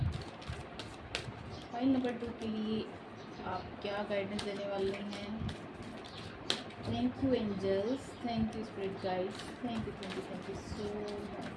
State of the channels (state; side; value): identical; both; correlation 1.00